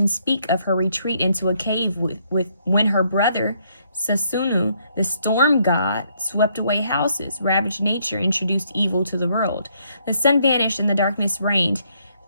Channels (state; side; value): inverted; both; correlation -0.71